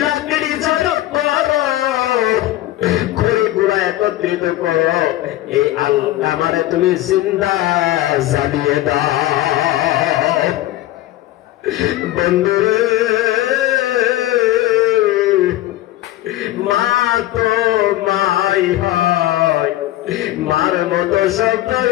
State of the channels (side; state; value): right; quieter; 15.4 dB